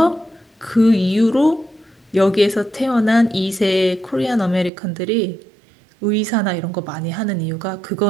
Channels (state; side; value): drops out; left; at 4.7 s